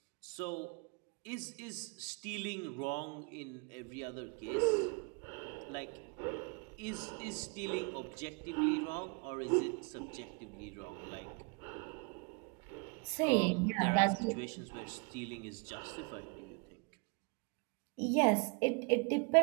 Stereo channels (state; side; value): quieter; left; 33.2 dB